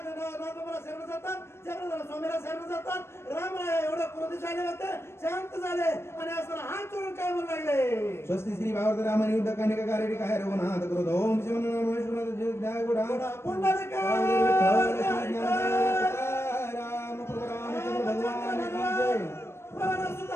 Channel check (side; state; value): right; late; 0.12 ms